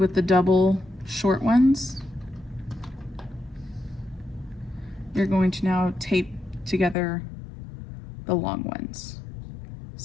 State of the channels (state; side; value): drops out; right; at 7.0 s